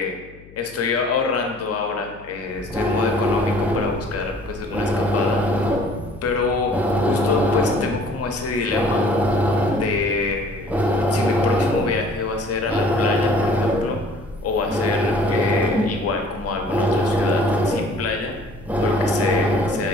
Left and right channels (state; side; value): noise; left; hum, 21 dB below the sound